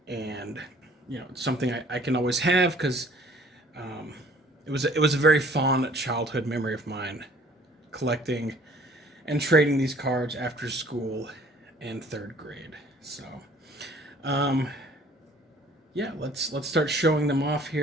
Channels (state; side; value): normal; both; correlation 0.54